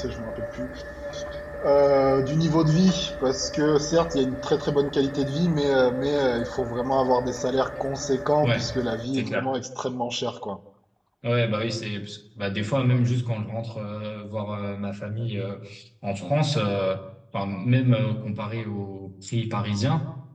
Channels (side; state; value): both; identical; correlation 1.00